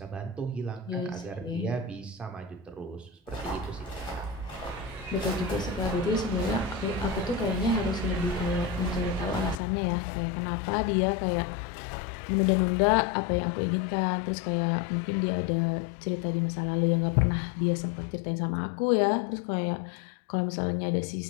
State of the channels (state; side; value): drops out; right; at 9.6 s